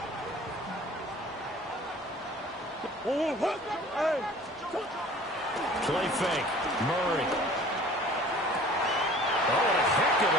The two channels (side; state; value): both; normal; correlation 0.47